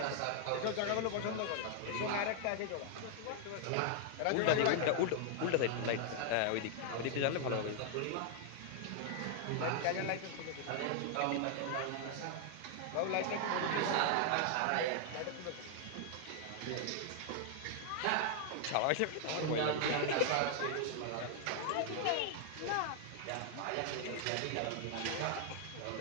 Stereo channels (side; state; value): both; different; correlation 0.00